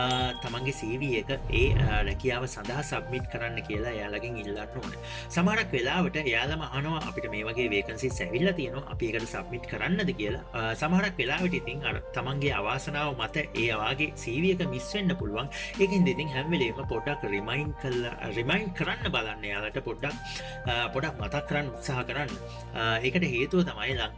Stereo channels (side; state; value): both; identical; correlation 1.00